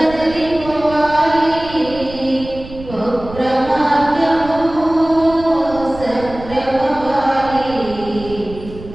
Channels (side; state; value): right; noise; rumble, 15 dB below the sound